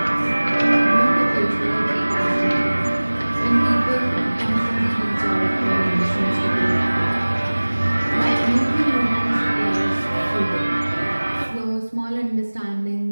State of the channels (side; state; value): both; inverted; correlation -1.00